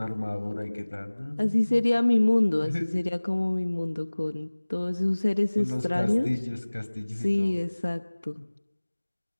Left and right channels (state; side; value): inverted; both; correlation -1.00